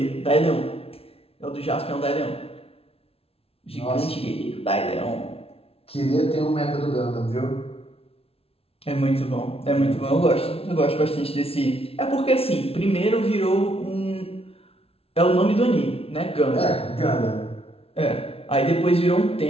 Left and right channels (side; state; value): right; late; 0.28 ms